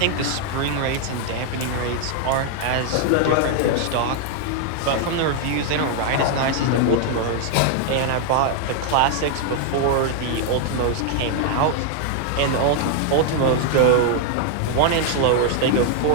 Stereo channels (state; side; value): different; both; correlation 0.00